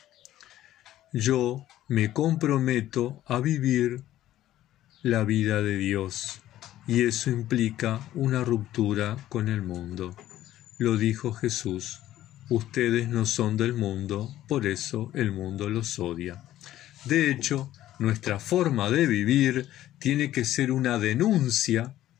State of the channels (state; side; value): quieter; right; 13.6 dB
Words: Yo me comprometo a vivir la vida de Dios y eso implica una ruptura con el mundo. Lo dijo Jesús, ustedes no son del mundo, por eso el mundo los odia. De hecho, nuestra forma de vivir tiene que ser una denuncia